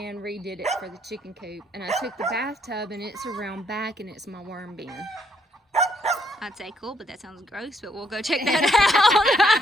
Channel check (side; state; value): both; normal; correlation 0.71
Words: redid it for the chicken coop. And I took the bathtub and it's around back and it's my worm bin. I'd say cool, but that sounds gross, but we'll go check that